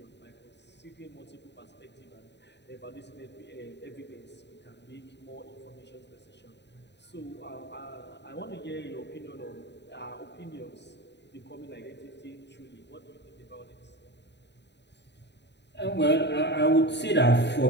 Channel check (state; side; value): late; right; 0.50 ms